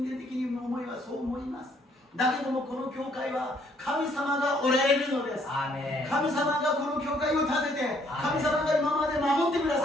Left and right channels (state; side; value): normal; both; correlation 0.66